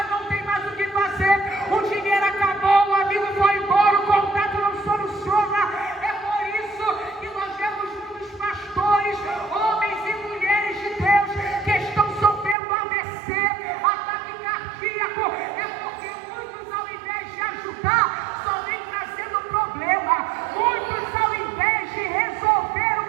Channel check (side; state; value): left; drops out; at 12.6 s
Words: não tem mais o que fazer, o dinheiro acabou, o amigo foi embora, o contato não soluciona. É por isso que nós vemos muitos pastores, homens e mulheres de Deus, que estão sofrendo AVC, ataque cardíaco. É porque muitos, ao invés de ajudar, só vem trazendo problema. Muitos, ao invés de resolver